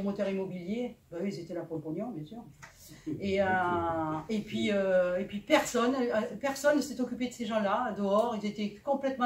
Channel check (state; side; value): identical; both; correlation 1.00